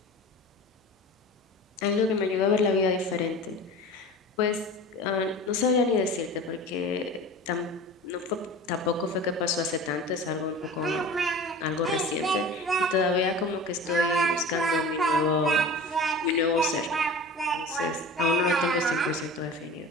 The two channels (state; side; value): normal; both; correlation 0.36